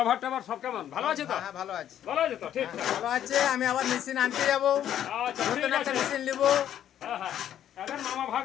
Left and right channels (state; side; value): quieter; right; 10.7 dB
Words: ট্যাবহার সব কেমন? ভালো আছে তো? হ্যাঁ ভালো আছে। ভালো আছে তো? ঠিক ভালো আছে। আমি আবার মেশিন আনতে যাবো। আচ্ছা ঠিক আছে। মেশিন নিবো। হ্যাঁ এদের মামা